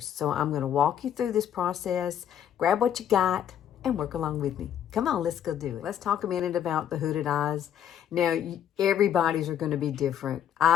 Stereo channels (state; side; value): quieter; right; 9.8 dB